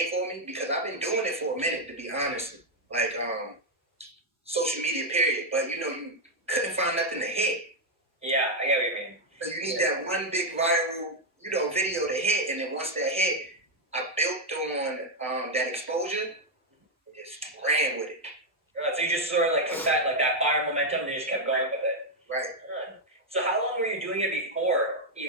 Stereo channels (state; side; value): normal; both; correlation 0.01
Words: for me, because I've been doing it for a minute, to be honest. Like social media period, but you know, you couldn't find nothing to hit. Yeah, I get what you mean. So you need that one big viral, you know, video to hit, and then once that hit, I built on that exposure and just ran with it. So you just sort of like took that fire momentum and you just kept going with it. Right. So how long were you doing it before,